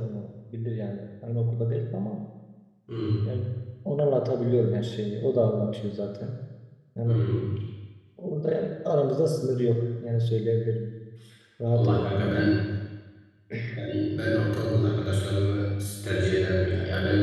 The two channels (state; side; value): identical; both; correlation 1.00